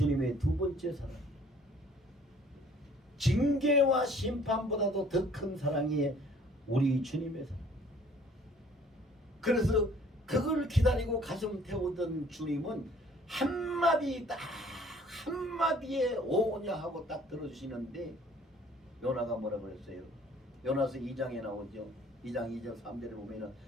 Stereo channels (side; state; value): both; normal; correlation 0.56